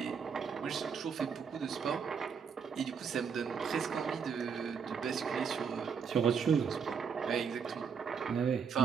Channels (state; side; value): quieter; left; 6.4 dB